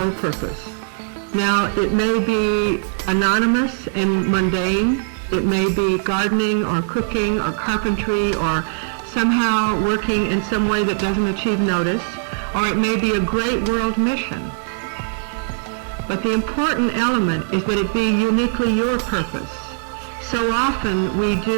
purpose. Now, it may be anonymous and mundane. It may be gardening or cooking or carpentry or somehow working in some way that doesn't achieve notice, or it may be a great world mission. But the important element is that it be uniquely your purpose. So often we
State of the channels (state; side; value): silent; left; digital silence